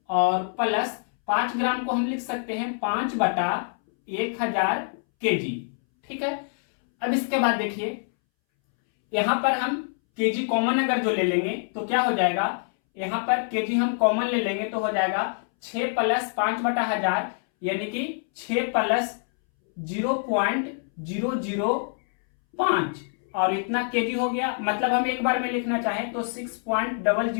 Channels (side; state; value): right; silent; 61 dB below the other